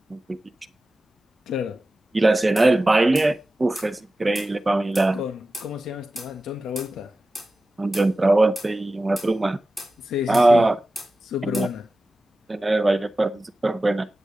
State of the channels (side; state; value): both; normal; correlation 0.95